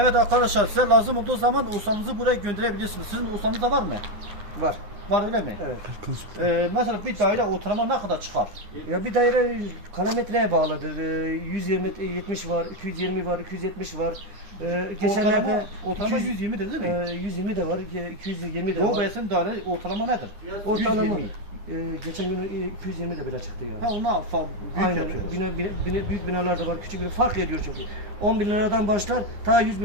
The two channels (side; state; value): left; late; 9.8 ms